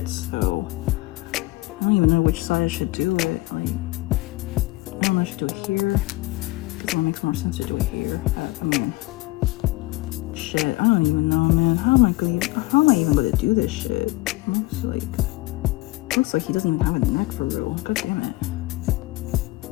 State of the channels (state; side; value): quieter; right; 20.8 dB